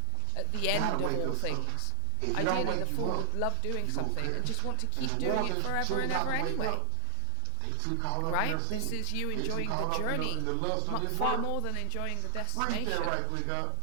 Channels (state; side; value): different; both; correlation 0.00